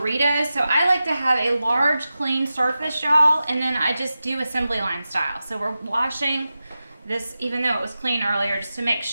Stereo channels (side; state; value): both; inverted; correlation -0.93